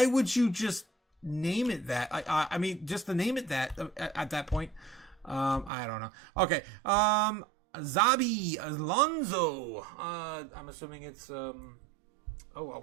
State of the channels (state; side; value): drops out; left; at 5.7 s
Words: would you just name it that? I mean, just to name it that at that point. I don't know. Okay. Zabi Alonso. I'm assuming it's